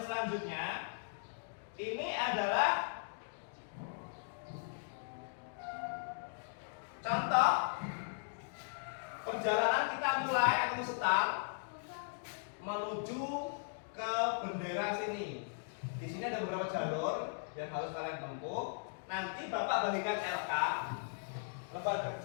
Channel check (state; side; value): silent; right; digital silence